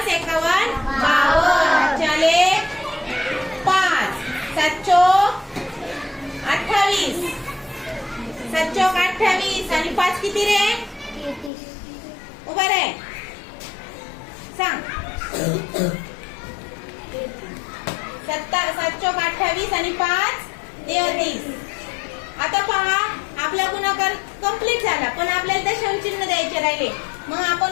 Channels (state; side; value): drops out; right; at 11.5 s